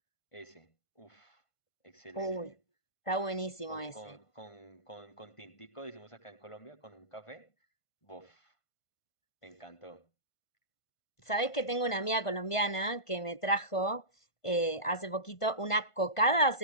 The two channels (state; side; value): late; right; 1.5 ms